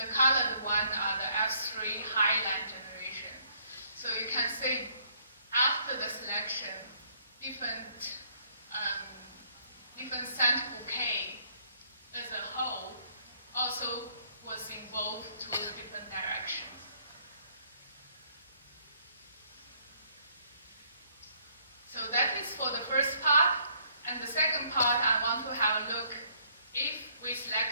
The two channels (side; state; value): both; inverted; correlation -0.65